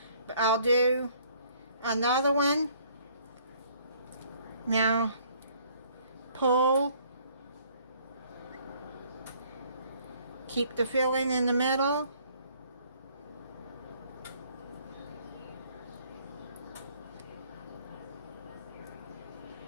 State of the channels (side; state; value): both; inverted; correlation -0.60